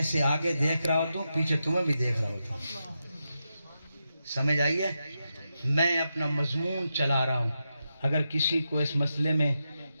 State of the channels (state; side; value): inverted; both; correlation -0.88